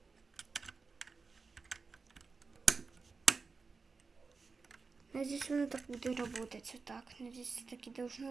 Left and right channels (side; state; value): left; quieter; 4.5 dB